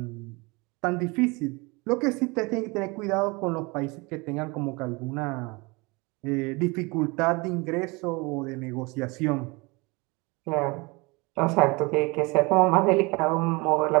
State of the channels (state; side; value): quieter; left; 26.5 dB